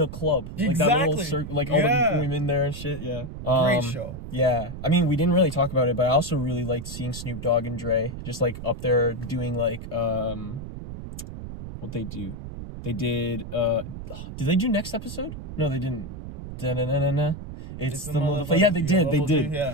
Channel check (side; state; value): right; noise; rumble, 10 dB below the sound